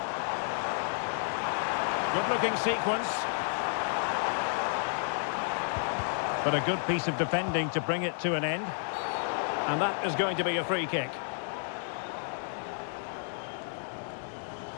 Good-looking sequence. But a good piece of defending to bring it to an end. And that is going to be a free kick.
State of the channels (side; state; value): right; silent; 57 dB below the other